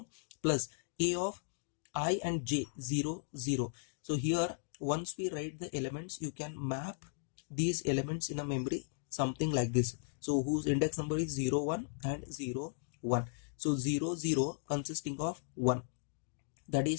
plus a of I and j 0 0. So here once we write the elements, you can map these elements in a memory something like this. So whose index number is 0 1 and 0 1. So 0 0 consisting of 1, that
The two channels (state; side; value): silent; right; digital silence